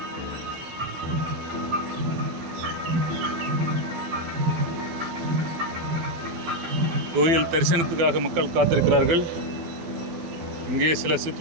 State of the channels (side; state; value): left; late; 12 ms